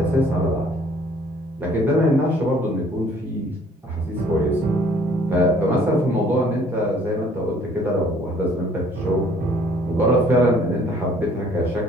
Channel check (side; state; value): both; normal; correlation 0.58